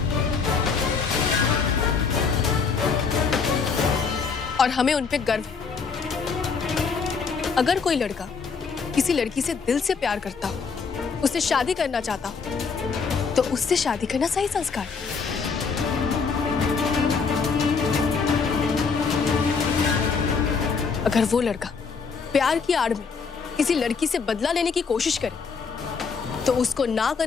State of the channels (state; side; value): quieter; right; 5.3 dB